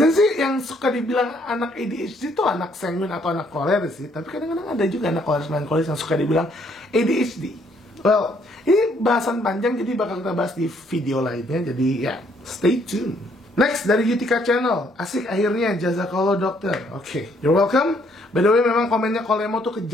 sih yang suka dibilang anak ADHD itu anak sanguin atau anak koleris sih. Tapi kadang-kadang ada juga anak koleris melankolis yang suka dibilang ADHD. Well, ini bahasan panjang jadi bakal kita bahas di video lainnya. Jadi ya, stay tune. Next, dari Yutika Channel. Asik akhirnya, jazakallah dokter. Oke, you're welcome. By the way, memang komennya Kolemo tuh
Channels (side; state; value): both; normal; correlation 0.67